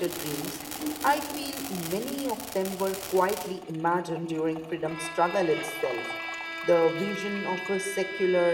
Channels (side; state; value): both; identical; correlation 1.00